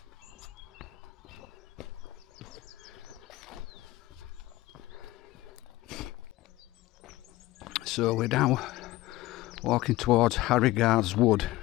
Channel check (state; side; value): quieter; right; 17.7 dB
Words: So we're now walking towards Harrigard's Wood.